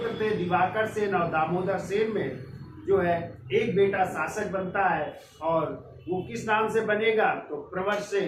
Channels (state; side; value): identical; both; correlation 1.00